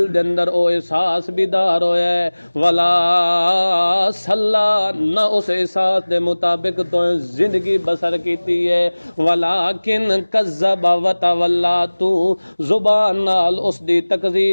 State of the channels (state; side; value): inverted; both; correlation -1.00